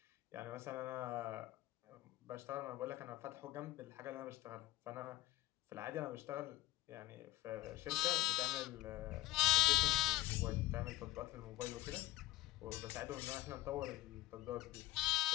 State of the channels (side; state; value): right; quieter; 17.8 dB